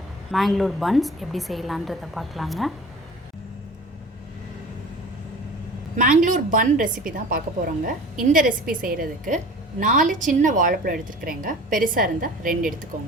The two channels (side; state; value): both; normal; correlation 0.41